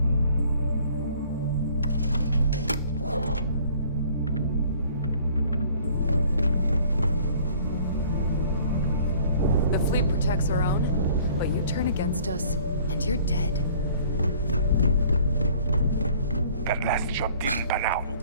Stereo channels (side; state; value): both; inverted; correlation -0.54